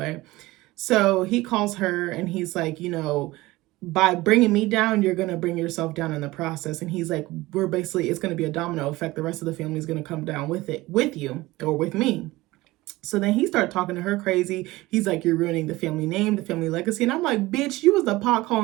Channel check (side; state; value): left; quieter; 19.4 dB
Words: so he calls her, and he's like, you know, by bringing me down, you're going to bring yourself down in the process. And he's like, it's going to be a domino effect. The rest of the family is going to come down with you or with me. So then he started talking to her crazy. He's like, you're ruining the family name, the family legacy. And I'm like, bitch, you was the pot